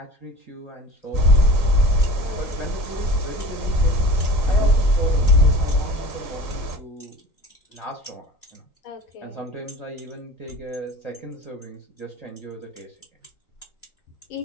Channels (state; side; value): late; right; 3.9 ms